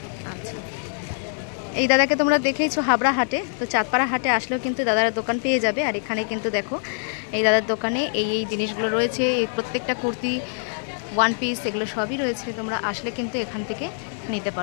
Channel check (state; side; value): silent; right; 63 dB below the other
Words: আচ্ছা, এই দাদাকে তোমরা দেখেইছো হাবড়া হাটে, তো চাঁদপাড়া হাটে আসলেও কিন্তু দাদার দোকান পেয়ে যাবে। আর এখানে কিন্তু দেখো এই দাদার দোকানে এই জিনিসগুলো রয়েছে, এই প্রত্যেকটা কুর্তি, 1 পিস, এগুলো সবই রয়েছে। তোমরা আসলে কিন্তু এখান থেকে নিতে